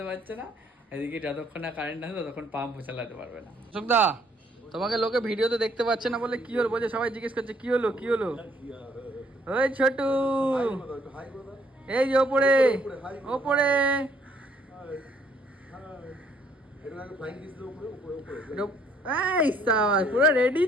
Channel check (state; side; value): normal; both; correlation 0.65